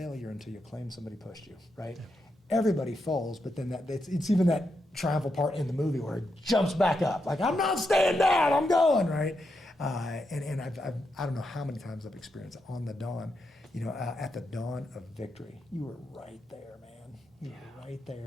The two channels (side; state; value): both; normal; correlation 0.84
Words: until you claim somebody pushed you, right? Yeah. Everybody falls, but then it's even that triumphal part in the movie where it jumps back up. Like, I'm not staying down, I'm going, right? And I don't know how many times I've experienced it on the dawn, you know, at the dawn of victory. You were right there, man. You were right